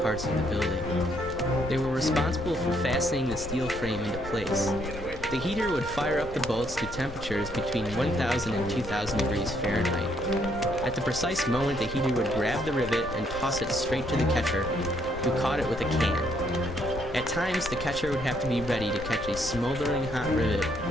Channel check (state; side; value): noise; left; rumble, 12 dB below the sound